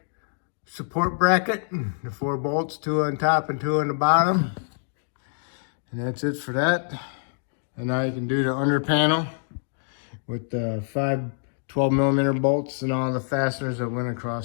support bracket. The 4 bolts, 2 on top and 2 on the bottom. And that's it for that. And now you can do the under panel with the 5 12mm bolts and all the fasteners that went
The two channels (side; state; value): right; silent; digital silence